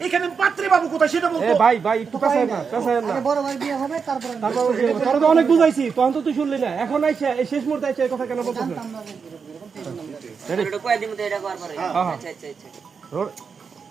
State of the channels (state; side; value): quieter; left; 5.8 dB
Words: এইখানে পাত্রী বাবু কোথায় সেটা বল এ তো। ভাই একটু কাছে না আগে বড় ভাই বিয়ে হবে তারপর তোর তো অনেক বুঝাইছি তখন তো তুই শুনলি না এখন আইছে এই শেষ মুহূর্তে আইছে এই কথা কেন বলছিস জানতাম না যে রেডি এটা কয় দিন মতো এটা করার পরে হ্যাঁ। আচ্ছা আচ্ছা আচ্ছা রোল